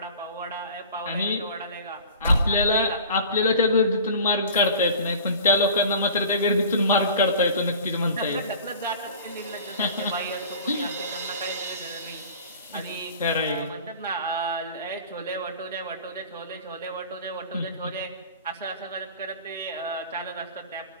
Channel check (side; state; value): both; inverted; correlation -0.41